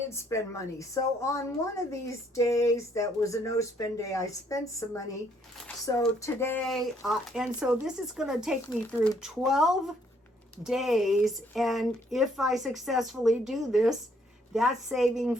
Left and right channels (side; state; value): both; normal; correlation 0.68